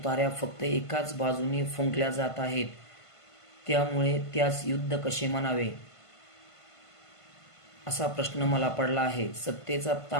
फक्त एकाच बाजूने फुंकल्या जात आहेत. त्यामुळे त्यास युद्ध कसे म्हणावे असा प्रश्न मला पडला आहे. सत्तेचा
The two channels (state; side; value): late; right; 1.5 ms